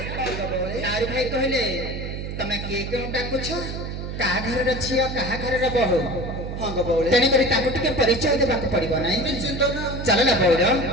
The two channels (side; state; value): right; noise; hum, 6 dB below the sound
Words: ନାରୀ ଭାଇ କହିଲେ ତମେ କିଏ କେଉଁ ଡାକୁଛ କାହା ଘରର ଝିଅ କାହା ଘରର ବୋହୂ ହଁ ଗো ବଉଳି ତେଣୁକରି ତାଙ୍କୁ ଟିକେ ପରିଚୟ ଦେବାକୁ ପଡିବ ନାହିଁ ନିଶ୍ଚିନ୍ତ ନା ଚାଲ ନା ବଉର